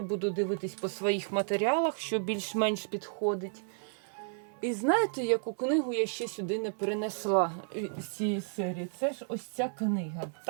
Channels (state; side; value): silent; left; 56 dB below the other